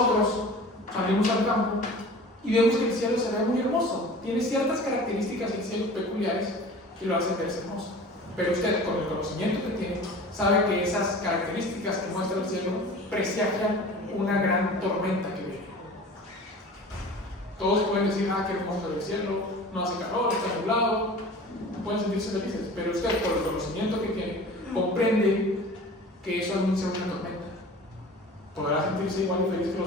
salimos al campo y vemos que el cielo se ve muy hermoso. Tiene ciertas características el cielo peculiares que lo hacen verse hermoso. Pero usted, con el conocimiento que tiene, sabe que esas características que muestra el cielo presagian una gran tormenta que viene. Todos pueden decir, qué hermoso el cielo, no hace calor, está nublado, pueden sentirse felices, pero usted, por el conocimiento que tiene, comprende que eso anuncia una tormenta. ¿Podrá sentirse igual de feliz que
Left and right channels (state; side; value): normal; both; correlation 0.40